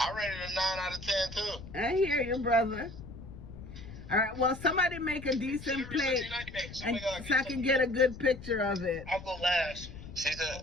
rated a 9 out of 10 too. I hear you, brother. All right, well, somebody make a decent plate and so I can get a good picture of it. I'll go last. She said,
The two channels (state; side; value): noise; left; rumble, 13 dB below the sound